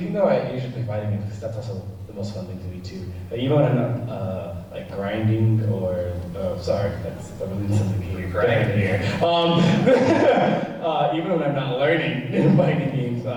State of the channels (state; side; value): identical; both; correlation 1.00